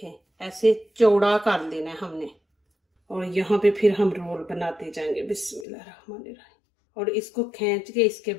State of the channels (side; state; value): right; drops out; at 5.7 s